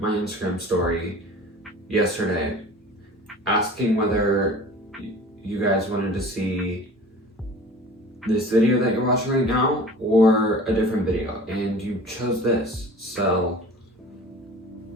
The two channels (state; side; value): normal; both; correlation 0.42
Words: my Instagram story yesterday asking whether you guys wanted to see this video that you're watching right now or a different video, and you chose this, so